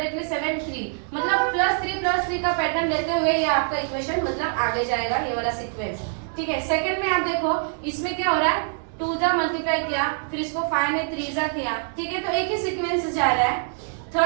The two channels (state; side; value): silent; left; digital silence